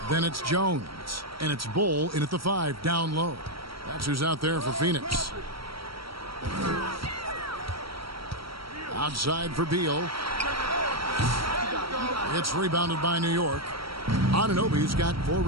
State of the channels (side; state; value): left; late; 0.75 ms